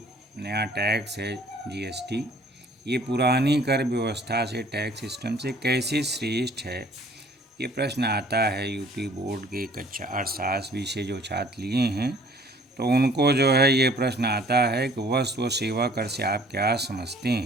नया टैक्स है जीएसटी, ये पुरानी कर व्यवस्था से, टैक्स सिस्टम से कैसे श्रेष्ठ है, ये प्रश्न आता है यूपी बोर्ड के कक्षा अर्थशास्त्र विषय जो छात्र लिए हैं, तो उनको जो है ये प्रश्न आता है कि वस्तु व सेवा कर से आप क्या समझते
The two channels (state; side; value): normal; both; correlation 0.55